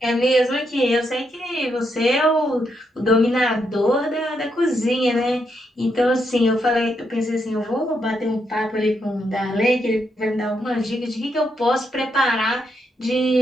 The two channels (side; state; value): both; normal; correlation 0.79